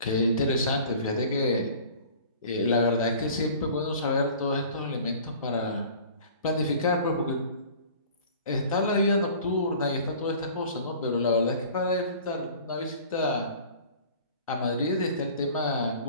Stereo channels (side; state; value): both; inverted; correlation -0.46